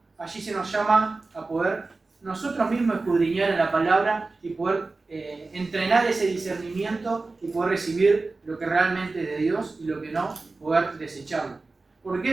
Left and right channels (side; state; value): left; quieter; 3.6 dB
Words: allí se nos llama a poder nosotros mismos escudriñar en la palabra y poder entrenar ese discernimiento y poder recibir lo que realmente es de Dios y lo que no, poder desecharlo. ¿Por